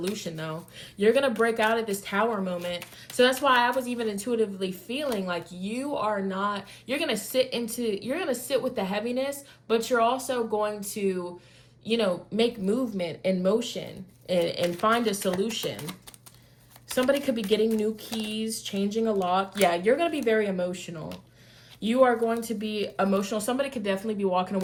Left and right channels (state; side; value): identical; both; correlation 1.00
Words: though. You're going to break out of this Tower moment. So that's why I was even intuitively feeling like you're going to sit with the heaviness, but you're also going to make movement and motion and find a solution. Somebody could be getting new keys, changing a lock. Yeah, you're going to be very emotional. You are going to be emotional. Somebody could definitely be walking